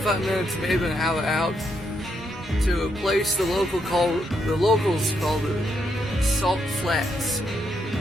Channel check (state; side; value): normal; both; correlation 0.78